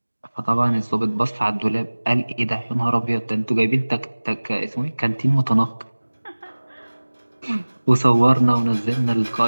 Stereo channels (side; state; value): both; inverted; correlation -1.00